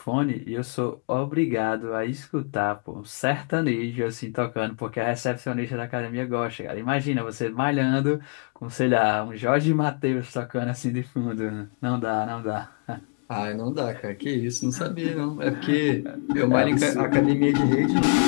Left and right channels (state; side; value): quieter; right; 36.0 dB